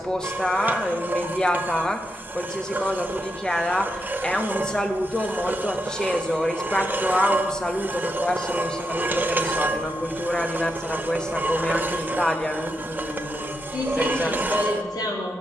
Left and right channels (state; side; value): normal; both; correlation 0.84